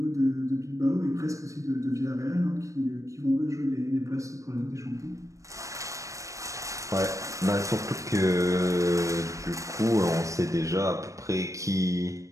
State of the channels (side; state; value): left; late; 0.15 ms